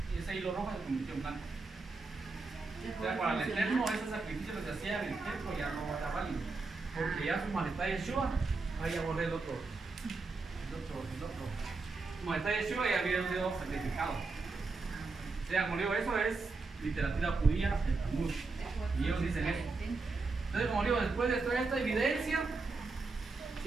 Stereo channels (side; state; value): left; quieter; 3.9 dB